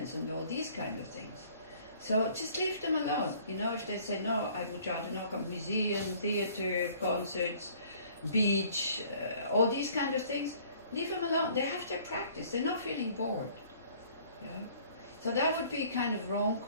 and all these kind of things. So just leave them alone. You know, if they say, no, I would rather not come, museum, theater, concerts, beach, all these kind of things, leave them alone. They have their practice. They're not feeling bored. Yeah? So that would be kind of wrong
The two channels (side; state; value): both; inverted; correlation -0.55